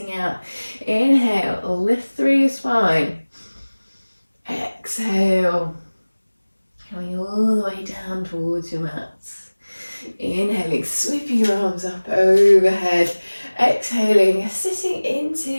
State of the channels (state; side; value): inverted; both; correlation -1.00